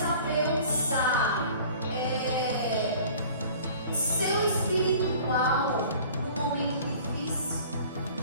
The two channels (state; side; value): inverted; both; correlation -0.47